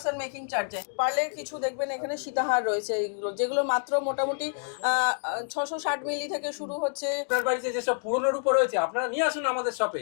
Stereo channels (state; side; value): silent; right; 59 dB below the other